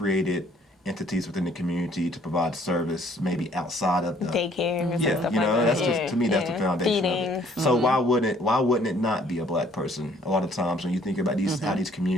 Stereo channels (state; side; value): normal; both; correlation 0.61